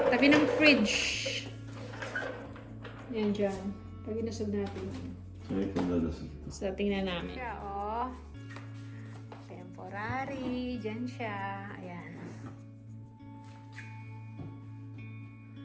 tabi ng fridge. Yan dyan. Pag inusog natin. So, ito dalasag. So, tingnan namin. Siya, oh. Temporary. Dyan siya. Ayan.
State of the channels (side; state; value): both; identical; correlation 1.00